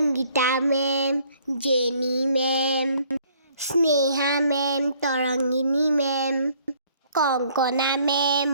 ma'am, Jeni ma'am, Sneha ma'am, Tarangini ma'am, Kankana ma'am,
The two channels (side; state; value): both; inverted; correlation -0.61